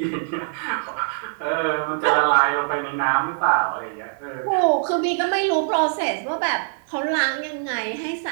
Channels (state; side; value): silent; left; digital silence